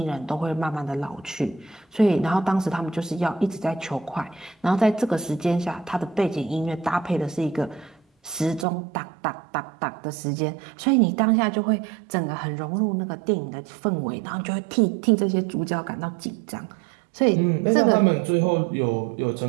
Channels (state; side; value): drops out; left; at 8.7 s